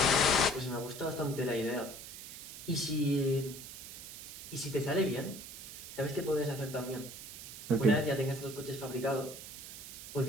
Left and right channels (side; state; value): right; noise; hiss, 12 dB below the sound